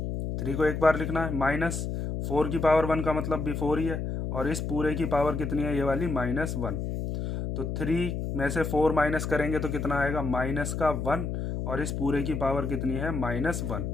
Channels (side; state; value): left; noise; hum, 3 dB below the sound